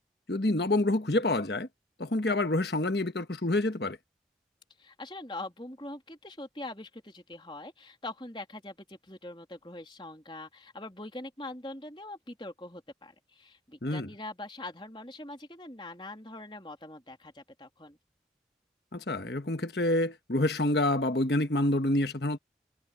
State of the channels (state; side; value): normal; both; correlation 0.45